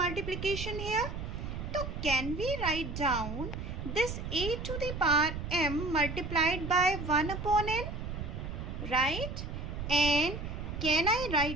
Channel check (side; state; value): right; noise; rumble, 6 dB below the sound